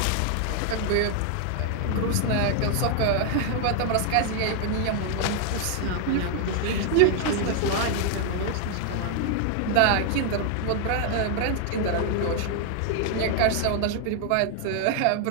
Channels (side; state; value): both; different; correlation 0.00